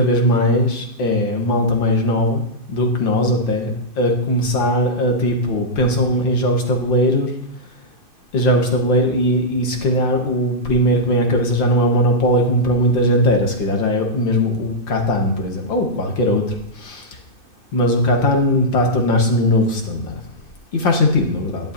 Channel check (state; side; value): late; right; 2.6 ms